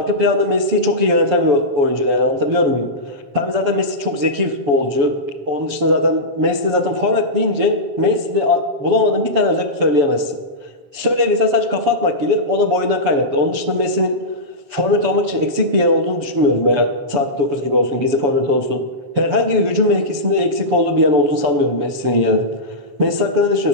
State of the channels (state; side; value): late; left; 7.0 ms